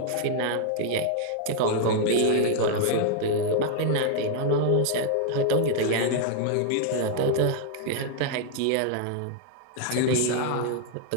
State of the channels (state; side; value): different; both; correlation 0.00